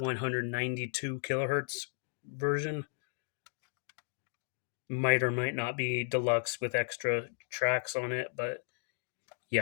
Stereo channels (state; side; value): silent; right; digital silence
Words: kilohertz version. Might or might not be deluxe with extra tracks on it, but